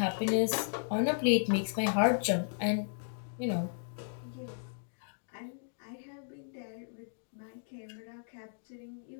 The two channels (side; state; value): right; silent; digital silence